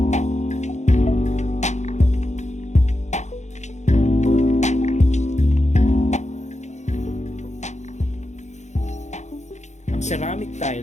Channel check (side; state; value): right; late; 0.34 ms